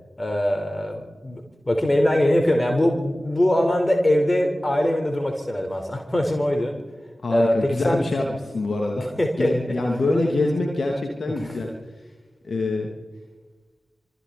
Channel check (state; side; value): normal; both; correlation 0.96